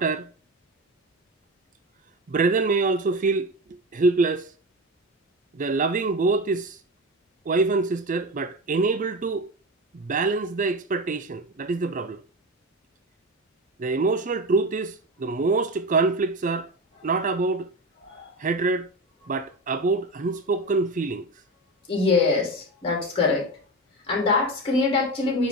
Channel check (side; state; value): both; normal; correlation 0.23